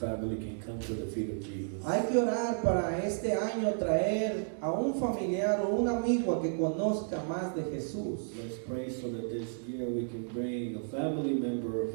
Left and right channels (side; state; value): left; silent; digital silence